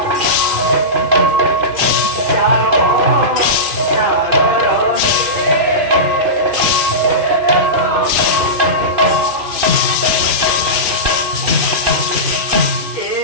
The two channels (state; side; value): late; left; 2.5 ms